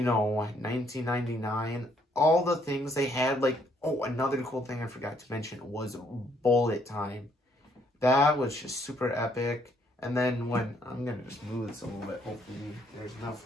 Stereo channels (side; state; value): both; normal; correlation 0.68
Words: all the things they had, like, oh, another cool thing I forgot to mention was bullet time. That was just super epic. And then when, I'm gonna just move this a little bit, hopefully there's enough